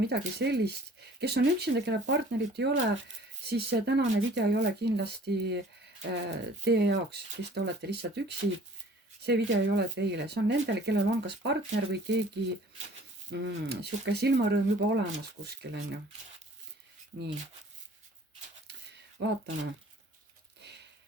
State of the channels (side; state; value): both; normal; correlation 0.51